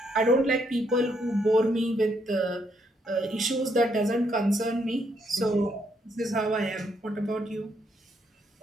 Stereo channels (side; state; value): both; normal; correlation 0.74